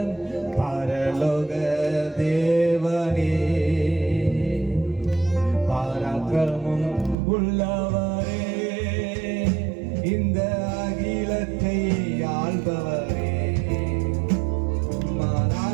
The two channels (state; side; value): drops out; left; at 7.2 s